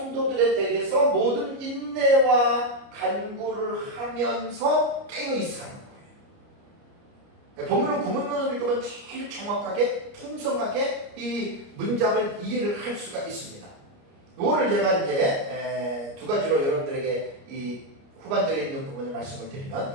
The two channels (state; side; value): late; left; 29 ms